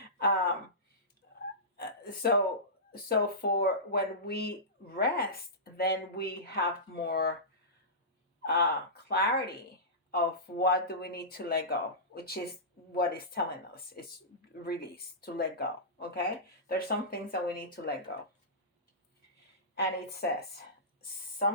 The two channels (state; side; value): normal; both; correlation -0.19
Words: So for when we rest, then we have more clarity of what do we need to let go, which is what it's telling us. It's release, to let go. Okay? There's some things that we need to let go. And it says,